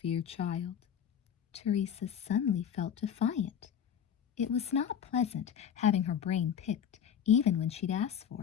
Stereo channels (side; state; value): right; quieter; 8.6 dB